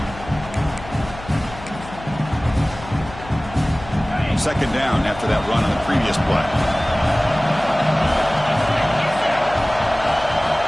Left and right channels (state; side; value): noise; left; hum, 15 dB below the sound